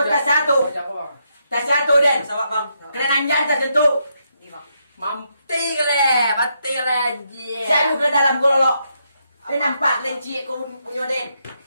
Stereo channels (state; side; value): inverted; both; correlation -0.79